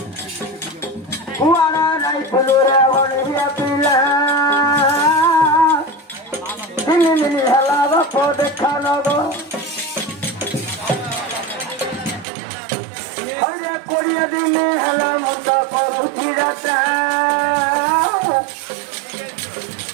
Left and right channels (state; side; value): drops out; left; at 12.2 s